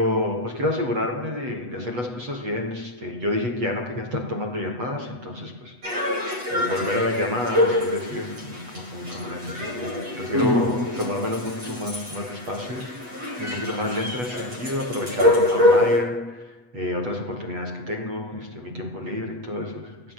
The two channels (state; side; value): late; left; 8.1 ms